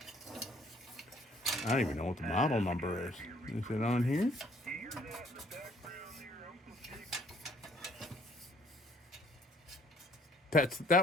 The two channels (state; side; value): normal; both; correlation 0.61